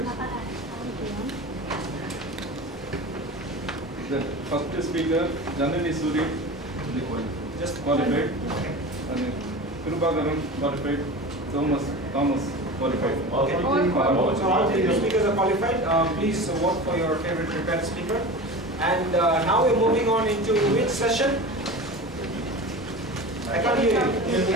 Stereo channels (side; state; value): both; normal; correlation 0.32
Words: The first speaker, Janani Suri, just qualified. And Kirubagaran qualified. Thomas qualified. Okay. So all the speakers are qualified. Please vote for your favorite prepared speaker. And now we're moving on into which session? I can't hear